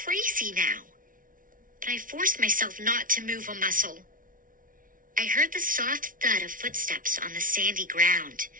now, but I forced myself not to move a muscle. I heard the soft thud of footsteps on the sandy ground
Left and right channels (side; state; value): left; late; 0.39 ms